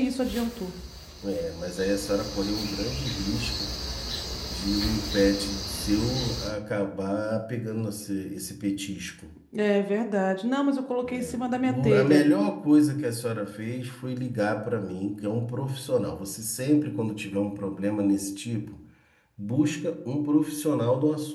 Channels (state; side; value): identical; both; correlation 1.00